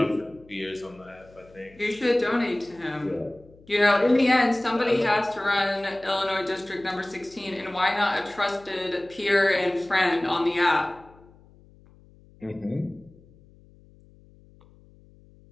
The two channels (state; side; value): noise; left; hum, 26 dB below the sound